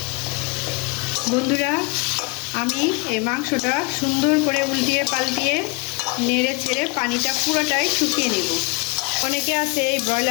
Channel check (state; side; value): quieter; right; 29.4 dB